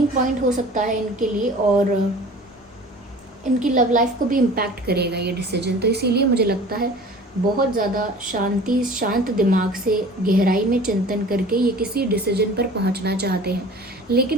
पॉइंट हो सकता है इनके लिए, और इनकी लव लाइफ को भी इम्पैक्ट करेगा ये डिसीजन। तो इसीलिए मुझे लगता है बहुत ज़्यादा शांत दिमाग से गहराई में चिंतन करके ये किसी डिसीजन पर पहुंचना चाहते हैं,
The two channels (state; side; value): normal; both; correlation 0.43